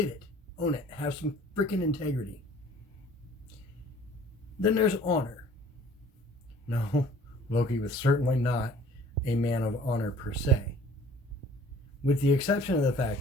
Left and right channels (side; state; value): both; normal; correlation 0.51